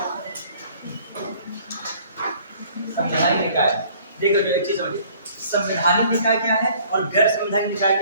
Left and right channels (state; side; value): inverted; both; correlation -0.55